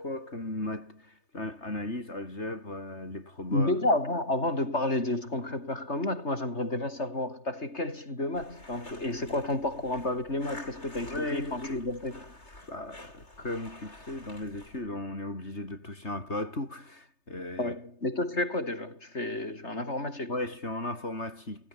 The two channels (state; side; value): late; right; 3.3 ms